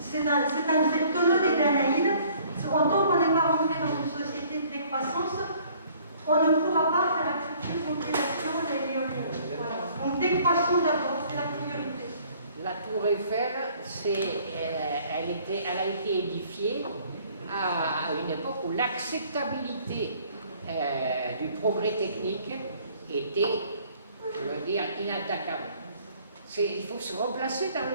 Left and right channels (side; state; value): both; inverted; correlation -0.57